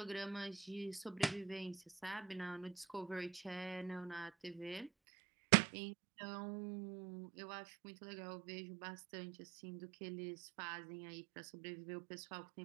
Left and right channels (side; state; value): left; drops out; at 4.9 s